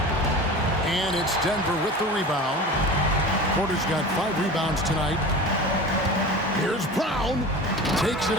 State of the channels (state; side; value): normal; both; correlation 0.34